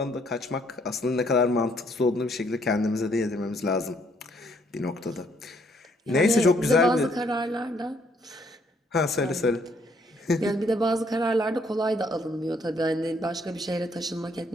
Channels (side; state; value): both; normal; correlation 0.68